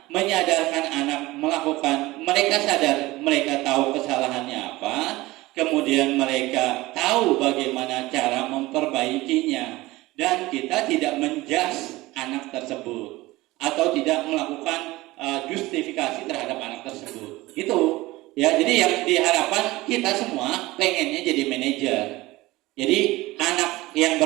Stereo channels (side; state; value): left; quieter; 19.4 dB